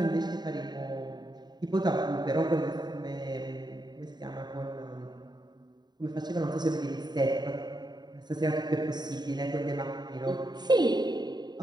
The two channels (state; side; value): late; left; 0.20 ms